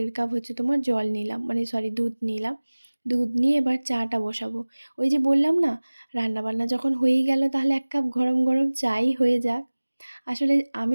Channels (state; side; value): inverted; both; correlation -1.00